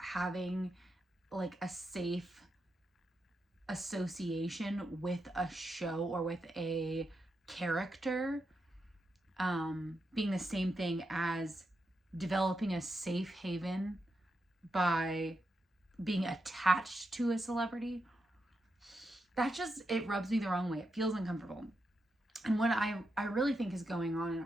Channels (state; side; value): normal; both; correlation 0.86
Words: like a safe association with a show or with a character being the same thing as developing a safe haven by being attached to a celebrity, it rubs me the wrong way. It feels uncomfortable. And what I really think is going on in